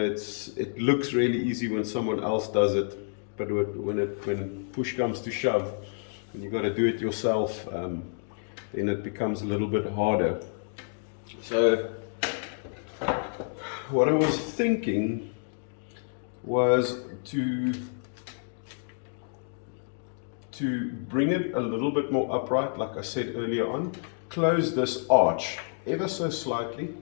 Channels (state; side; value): silent; right; digital silence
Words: looks really easy when someone else does it, but when push comes to shove, and you've got to do it yourself, then it becomes a little bit harder. So what I was thinking was to bring it a little bit more upright, like I said earlier on. Close this arch ever so slightly,